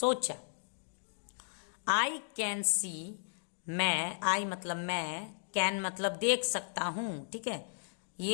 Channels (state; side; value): silent; right; digital silence